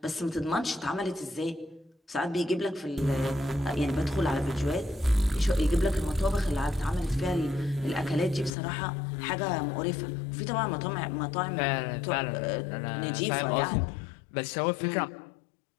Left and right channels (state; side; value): drops out; right; at 8.5 s